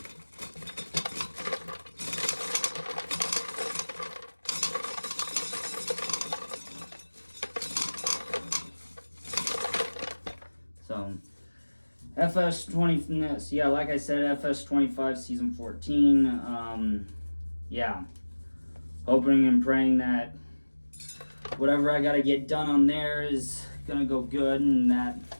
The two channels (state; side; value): inverted; both; correlation -1.00